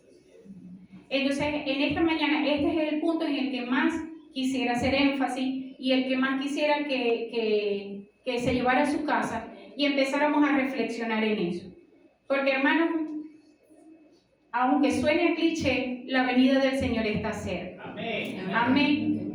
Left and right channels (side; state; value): both; identical; correlation 1.00